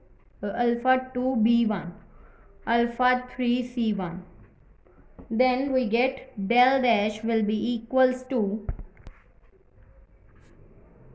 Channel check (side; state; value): both; identical; correlation 1.00